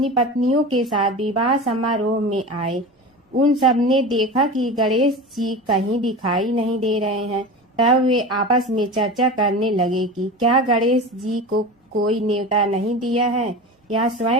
पत्नियों के साथ विवाह समारोह में आए। उन सब ने देखा कि गणेश जी कहीं दिखाई नहीं दे रहे हैं। तब वे आपस में चर्चा करने लगे कि क्या गणेश जी को कोई न्योता नहीं दिया है या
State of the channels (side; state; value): both; normal; correlation 0.29